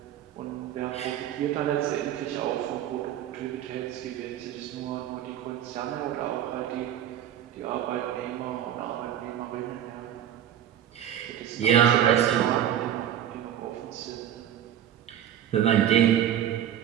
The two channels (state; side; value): quieter; left; 10.6 dB